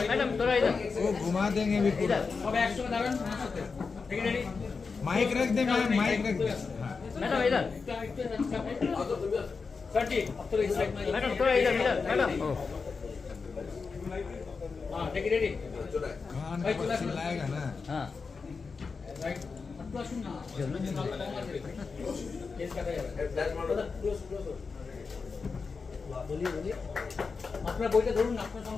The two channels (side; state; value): right; quieter; 4.8 dB